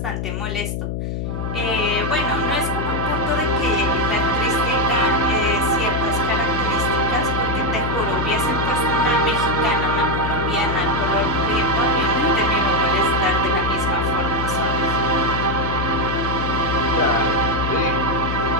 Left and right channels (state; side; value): noise; left; hum, 3 dB below the sound